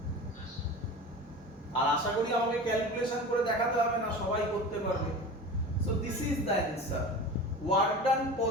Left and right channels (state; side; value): normal; both; correlation 0.33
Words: আর আশা করি আমাকে ক্যালকুলেশন করে দেখাতে হবে না, সবাই করতে পারবে। So this is the answer. Work done